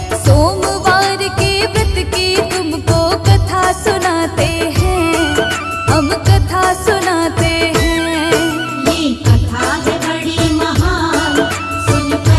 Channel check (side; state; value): both; identical; correlation 1.00